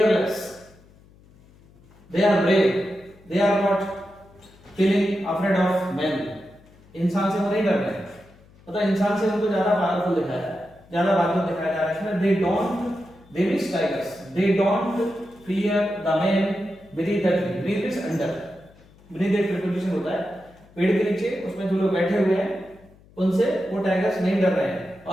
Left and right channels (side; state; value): left; noise; hum, 26 dB below the sound